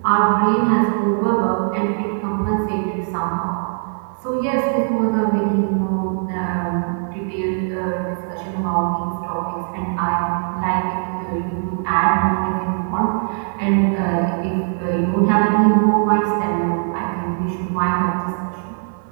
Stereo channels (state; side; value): silent; left; 65 dB below the other